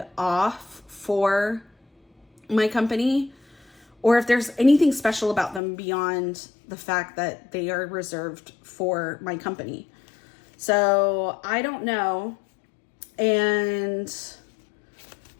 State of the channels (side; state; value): right; drops out; at 5.6 s